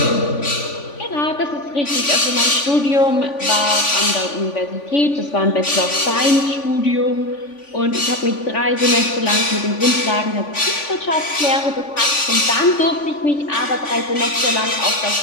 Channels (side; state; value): right; late; 3.5 ms